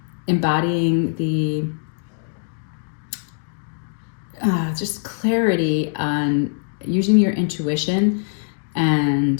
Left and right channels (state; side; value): silent; right; digital silence